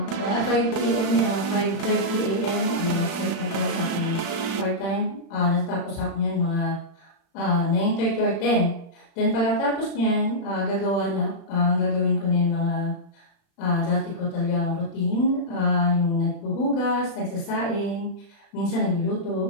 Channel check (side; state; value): right; late; 36 ms